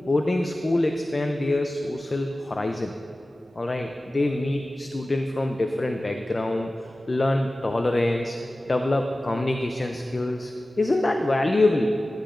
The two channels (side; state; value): both; normal; correlation 0.96